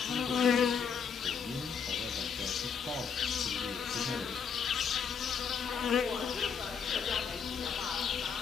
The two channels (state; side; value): quieter; right; 6.5 dB